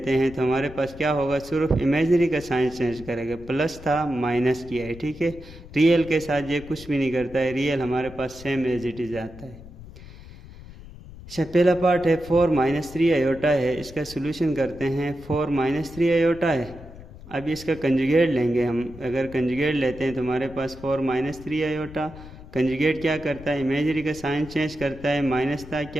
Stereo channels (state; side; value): noise; left; rumble, 17 dB below the sound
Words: हैं तो हमारे पास क्या होगा? सिर्फ इमेजरी का साइन चेंज करेगा। प्लस था, माइनस किया है, ठीक है। रियल के साथ ये कुछ भी नहीं करता है, रियल हमारे पास सेम एज इट इज आता है। अच्छा, पहला पार्ट है 4 माइनस 3 आयोटा है। इसका सोल्यूशन करते हैं। 4 माइनस 3 आयोटा है। अब इसका कंजुगेट लेंगे हम। अगर कंजुगेट लेते हैं तो हमारे पास 4 माइनस 3 आयोटा। कंजुगेट क्या करता है? इमेजरी का साइन चेंज करता है। माइनस था,